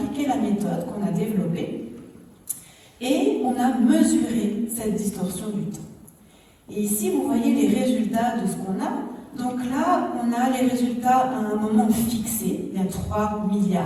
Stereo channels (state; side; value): identical; both; correlation 1.00